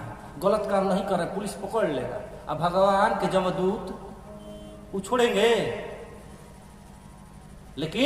गलत काम नहीं करे, पुलिस पकड़ लेगा। अब भगवान के जमदूत वो छोड़ेंगे,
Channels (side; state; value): both; identical; correlation 1.00